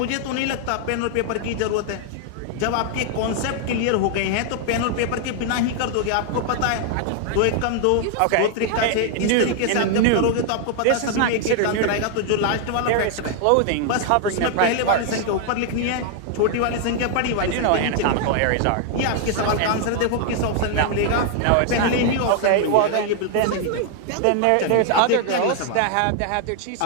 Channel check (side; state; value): both; different; correlation 0.00